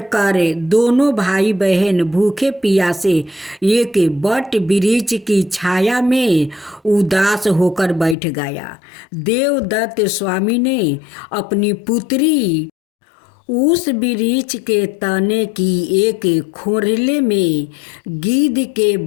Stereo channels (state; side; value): drops out; right; at 8.2 s